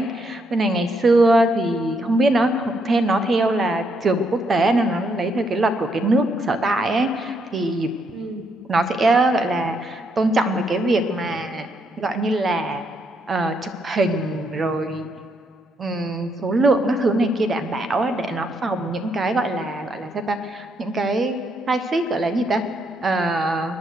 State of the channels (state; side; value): normal; both; correlation 0.75